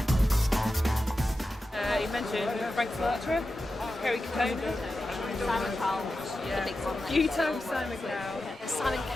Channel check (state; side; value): normal; both; correlation 0.91